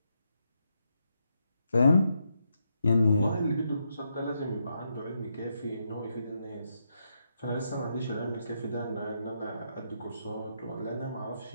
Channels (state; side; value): inverted; both; correlation -0.81